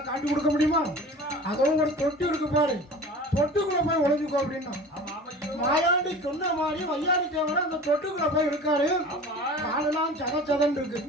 காட்டி கொடுக்க முடியுமா அதுவும் ஒரு தொட்டி இருக்கு பாரு தொட்டுக்குள்ள போய் ஒளிஞ்சுக்கோ அப்படின்னா மாயாண்டி சொன்ன மாதிரி வையாடி தேவர அந்த தொட்டுக்குள்ள போய் இருக்காரு காலெல்லாம் சதச்சதன் இருக்கு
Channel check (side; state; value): both; normal; correlation 0.39